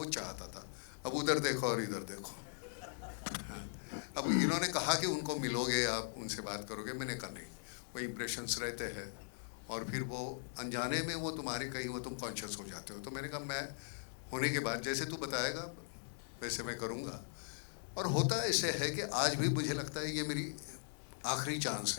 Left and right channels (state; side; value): silent; right; 51 dB below the other